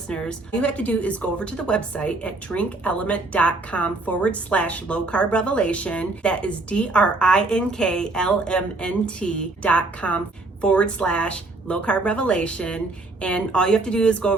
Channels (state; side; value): quieter; left; 3.1 dB